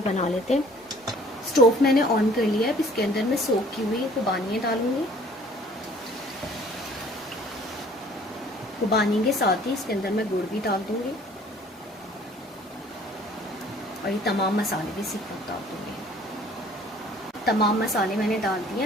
बना लेते हैं। स्टोव मैंने ऑन कर लिया है। अब इसके अंदर मैं सोक की हुई खुबानियाँ डालूंगी। खुबानी के साथ ही इसके अंदर मैं गुड़ भी डाल दूंगी और ये तमाम मसाले भी इसी पर डाल दूंगी। तमाम मसाले मैंने डाल दिए।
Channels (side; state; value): both; normal; correlation 0.54